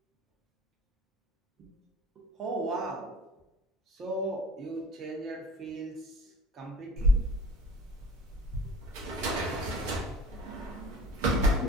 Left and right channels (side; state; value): both; normal; correlation 0.45